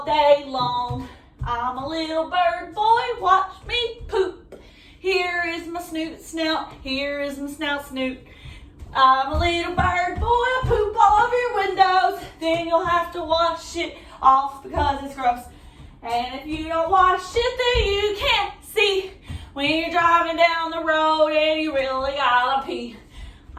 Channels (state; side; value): identical; both; correlation 1.00